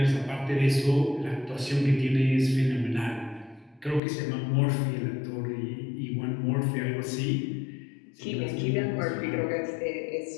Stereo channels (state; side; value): drops out; right; at 4.0 s